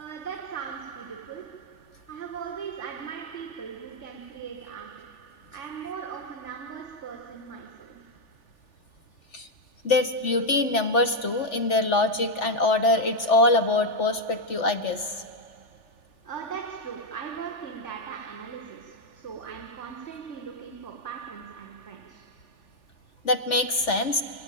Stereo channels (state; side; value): late; right; 3.4 ms